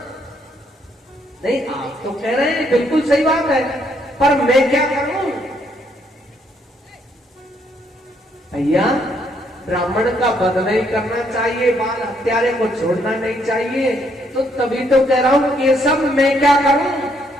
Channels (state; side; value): normal; both; correlation 0.71